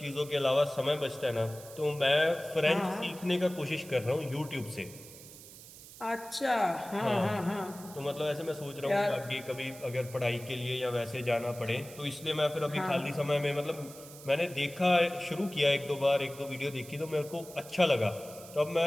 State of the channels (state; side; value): noise; right; hiss, 17 dB below the sound